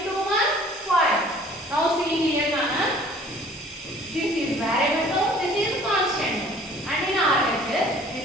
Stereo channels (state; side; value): normal; both; correlation 0.51